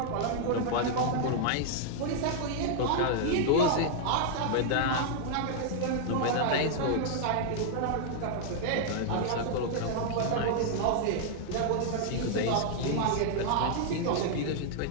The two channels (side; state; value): both; different; correlation -0.01